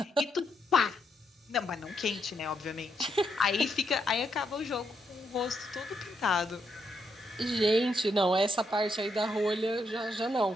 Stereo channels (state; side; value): normal; both; correlation 0.78